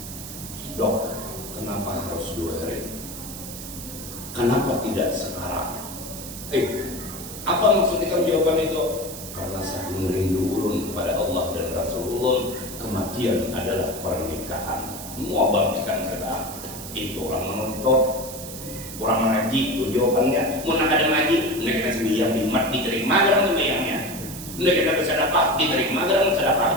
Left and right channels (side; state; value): right; noise; hiss, 11 dB below the sound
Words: Dok, kenapa harus 2 hari? Kenapa tidak sekarang? Apa maksud ikam jawaban itu? Karena saking rindu ulun kepada Allah dan Rasulullah, kematian adalah pernikahan. Mau bangkitan kita, itu orang menonton, orang mengaji, itu jawabannya. Mau nak ada ngaji, mereka sembiang bimat diterima dalam sembiangnya. Mereka bersedekah diterima dalam